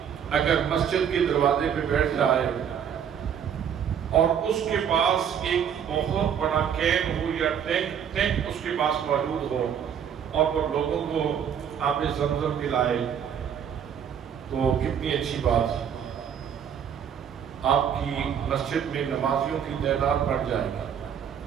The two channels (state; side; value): quieter; left; 8.3 dB